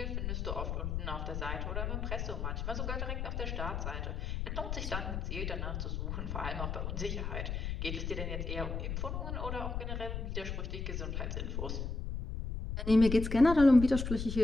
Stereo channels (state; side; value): noise; left; rumble, 3 dB below the sound